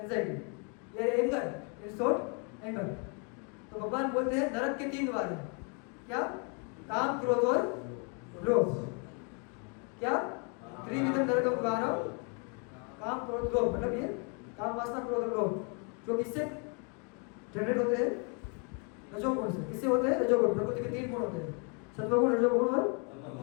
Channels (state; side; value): quieter; right; 36.6 dB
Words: या एंगर, इन शॉर्ट एंगर। तो भगवान बोलते हैं नरक के 3 द्वार हैं, क्या, काम क्रोध और लोभ, क्या, त्रिविधम नरकम द्वारम, काम क्रोध लोभ, मतलब ये काम वासना क्रोध और लोभ जो किससे जनरेट होते हैं, रजोगुण से। किससे होते हैं, रजोगुण। प्रकृति के 3 गुण होते हैं, सत्वगुण, रजोगुण और